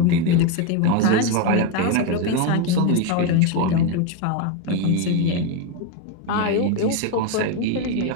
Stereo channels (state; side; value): different; both; correlation 0.03